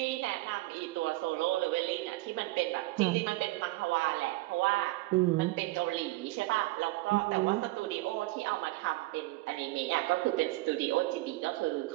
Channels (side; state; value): left; quieter; 20.0 dB